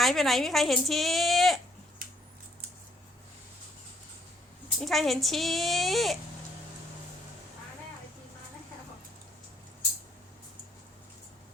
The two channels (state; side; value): normal; both; correlation 0.67